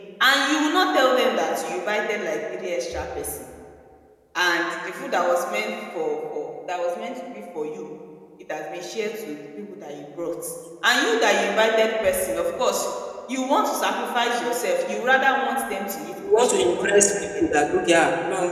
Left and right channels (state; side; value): identical; both; correlation 1.00